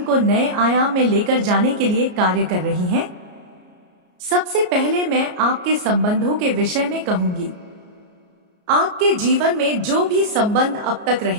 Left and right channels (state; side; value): late; left; 34 ms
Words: को नए आयाम में लेकर जाने के लिए कार्य कर रही हैं? सबसे पहले मैं आपके संबंधों के विषय में कहूंगी। आपके जीवन में जो भी संबंध अब तक